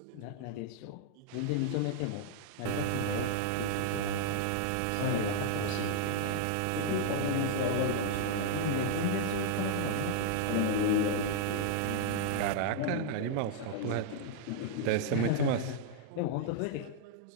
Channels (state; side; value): different; both; correlation -0.01